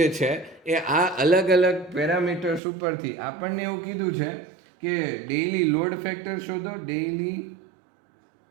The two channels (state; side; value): drops out; left; at 2.6 s